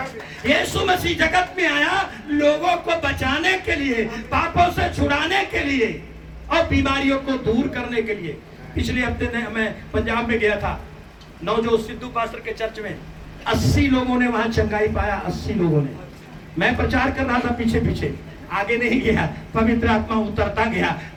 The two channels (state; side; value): identical; both; correlation 1.00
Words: यीशु मसीह जगत में आया लोगों को बचाने के लिए, पापों से छुड़ाने के लिए और बीमारियों को दूर करने के लिए। पिछले हफ्ते मैं पंजाब में गया था, नवजोत सिद्धू पास्टर के चर्च में 80 लोगों ने वहां चंगाई पाया। 80 लोगों ने। मैं प्रचार कर रहा था पीछे पीछे, आगे नहीं गया। पवित्र आत्मा उतरता गया,